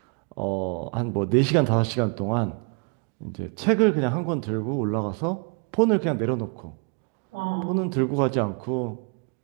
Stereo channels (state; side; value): quieter; left; 37.4 dB